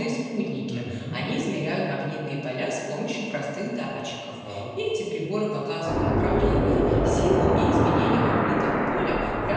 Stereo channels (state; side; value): identical; both; correlation 1.00